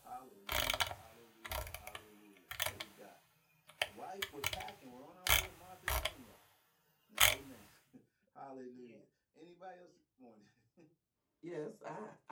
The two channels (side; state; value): both; identical; correlation 1.00